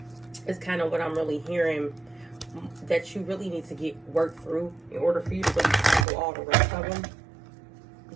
is kind of what I'm really hearing that you really need to get worked through in order for you to really tackle all the rest of them.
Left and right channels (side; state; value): left; drops out; at 6.1 s